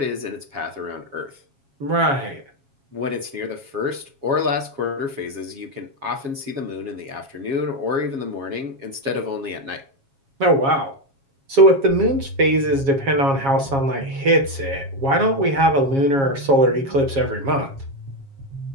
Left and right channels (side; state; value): left; late; 7.3 ms